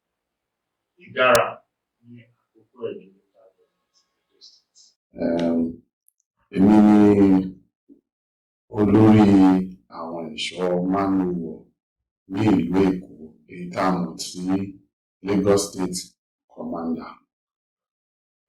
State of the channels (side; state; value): both; identical; correlation 1.00